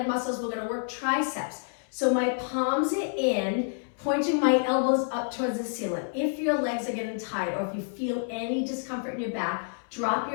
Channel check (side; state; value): right; silent; 59 dB below the other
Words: muscles, we're gonna work triceps. So my palms are in, pointing my elbows up towards the ceiling. If your legs are getting tight or if you feel any discomfort in your back, drop